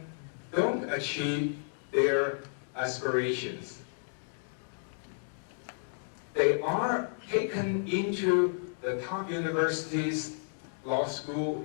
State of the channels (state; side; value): silent; right; digital silence